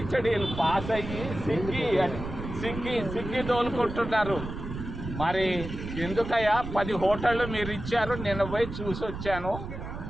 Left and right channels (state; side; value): noise; right; rumble, 8 dB below the sound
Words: పాస్ అయ్యి సిగ్గి తోలుకుంటున్నారు. మరి ఎందుకయ్యా 10 హోటళ్ళు మీరు ఇచ్చారు? నిన్న పోయి చూసి వచ్చాను.